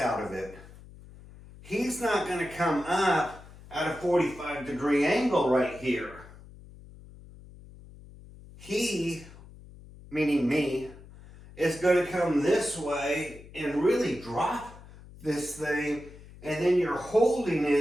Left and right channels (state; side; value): noise; left; hum, 19 dB below the sound